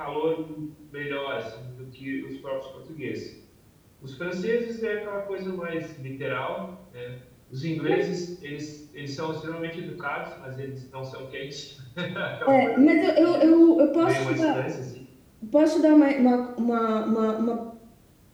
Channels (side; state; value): both; identical; correlation 1.00